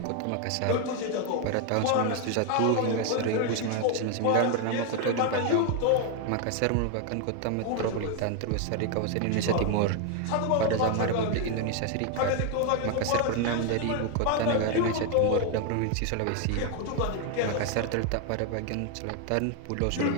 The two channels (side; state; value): both; different; correlation 0.01